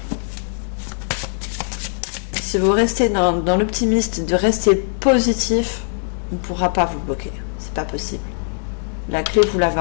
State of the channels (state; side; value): silent; right; digital silence